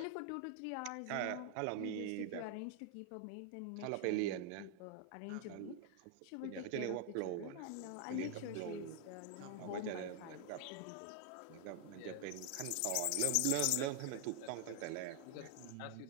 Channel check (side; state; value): both; different; correlation 0.00